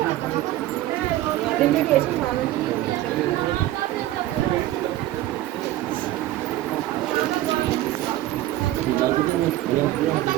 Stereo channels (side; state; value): left; quieter; 14.9 dB